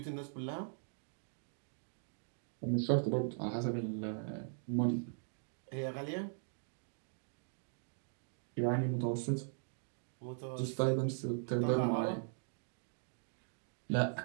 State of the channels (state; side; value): silent; left; digital silence